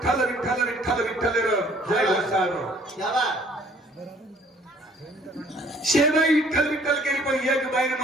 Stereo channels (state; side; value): normal; both; correlation 0.57